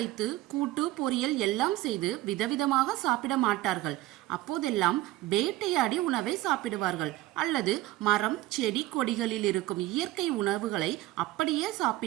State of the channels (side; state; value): left; quieter; 16.7 dB